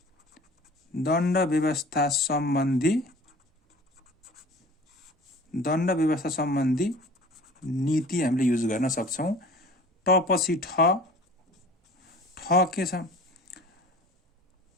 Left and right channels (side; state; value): both; normal; correlation 0.44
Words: व्यवस्था सम्बन्धी नीति हामीले युज गर्न सक्छौं। ट पछि ठ के छ,